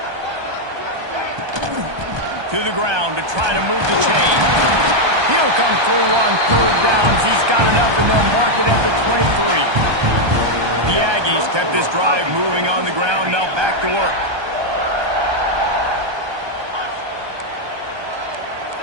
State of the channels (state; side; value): late; left; 1.2 ms